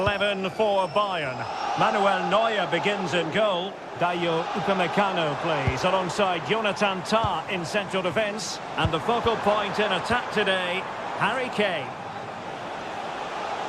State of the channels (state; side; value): identical; both; correlation 1.00